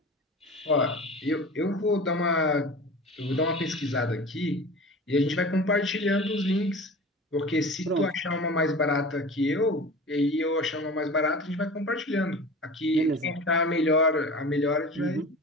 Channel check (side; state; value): both; normal; correlation 0.36